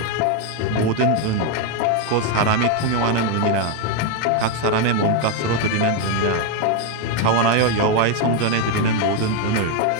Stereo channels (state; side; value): different; both; correlation 0.01